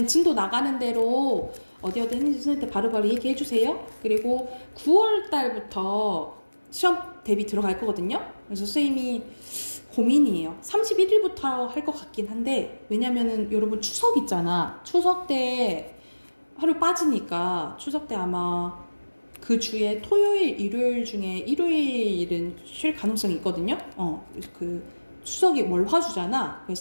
진도 나가는 대로 어디 했는지 선생님한테 바로바로 얘기해 주세요. 그리고 9월 달부터 시험 대비 들어갈 거거든요. 그래서 선생님이 고민이에요. 31일부터 할 것 같긴 한데, 왜냐면은 여러분 추석 있잖아. 추석 때 하루 빠지니까 추석 때 아마 그 주에 토요일, 일요일 중에 일요일은 쉴 가능성이 있거든요. 추석이 월화주잖아.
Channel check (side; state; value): both; inverted; correlation -1.00